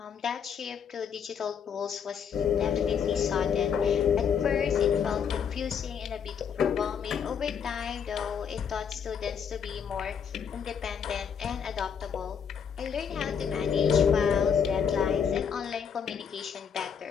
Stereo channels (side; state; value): right; quieter; 7.3 dB